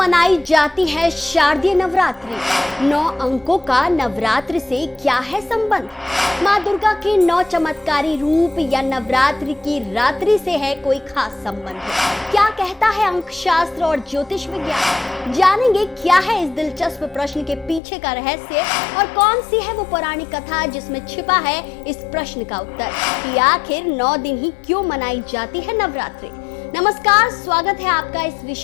जाती है शारदीय नवरात्रि? 9 अंकों का नवरात्रि से क्या है संबंध? माँ दुर्गा के 9 चमत्कारी रूप या नवरात्रि की रात्रि से है कोई खास संबंध? क्या कहता है अंक शास्त्र और ज्योतिष विज्ञान? जानेंगे क्या है इस दिलचस्प प्रश्न के पीछे का रहस्य और कौन सी है वो पौराणिक कथा जिसमें छिपा है इस प्रश्न का उत्तर कि आखिर 9 दिन ही क्यों मनाई जाती है नवरात्रि। नमस्कार, स्वागत है आपका इस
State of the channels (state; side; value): drops out; right; at 17.8 s